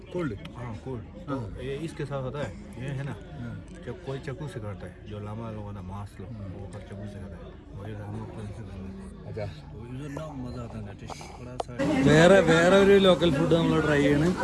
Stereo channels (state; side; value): identical; both; correlation 1.00